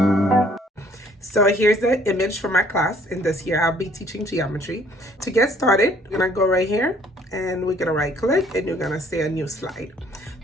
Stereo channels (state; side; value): normal; both; correlation 0.60